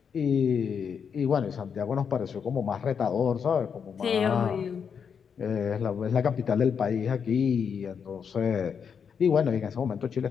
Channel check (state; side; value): quieter; right; 6.9 dB